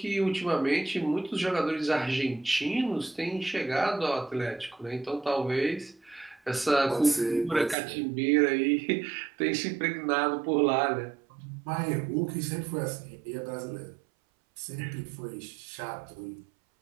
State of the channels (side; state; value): left; drops out; at 7.8 s